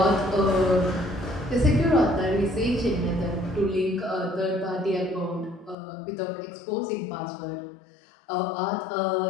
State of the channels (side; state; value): right; drops out; at 5.8 s